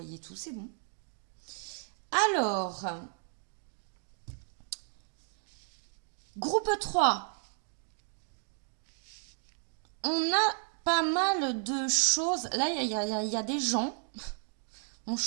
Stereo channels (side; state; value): left; silent; 55 dB below the other